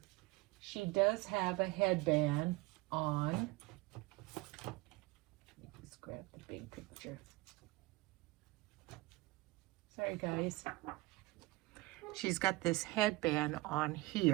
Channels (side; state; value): left; quieter; 22.2 dB